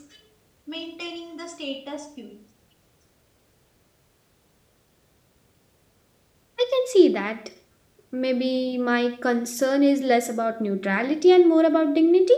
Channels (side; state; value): both; identical; correlation 1.00